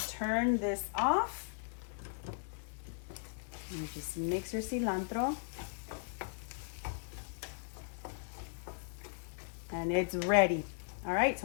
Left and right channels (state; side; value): silent; right; digital silence